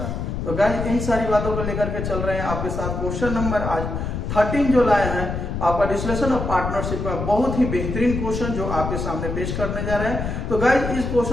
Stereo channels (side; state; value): left; noise; rumble, 3 dB below the sound